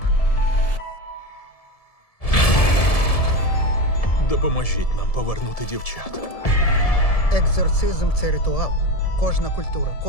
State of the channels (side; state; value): right; late; 1.7 ms